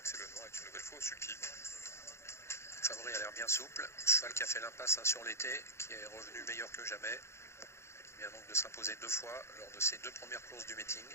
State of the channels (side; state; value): right; late; 0.13 ms